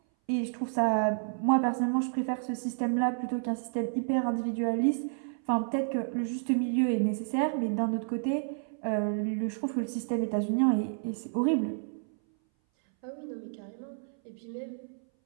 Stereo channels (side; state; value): left; silent; 58 dB below the other